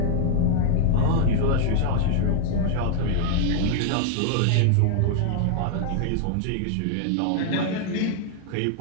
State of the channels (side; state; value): both; different; correlation -0.01